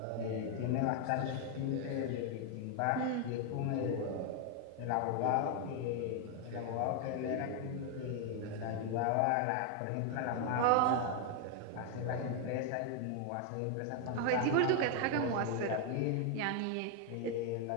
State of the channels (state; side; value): different; both; correlation 0.01